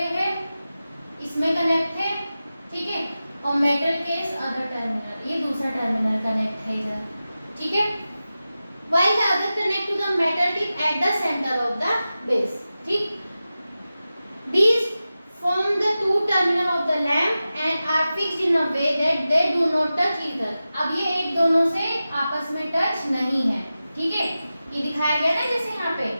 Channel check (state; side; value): inverted; both; correlation -0.94